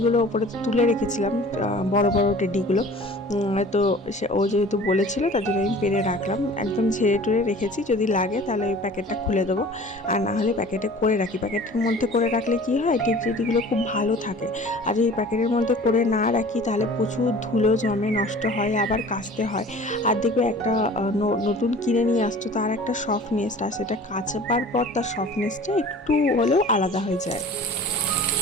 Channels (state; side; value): normal; both; correlation 0.44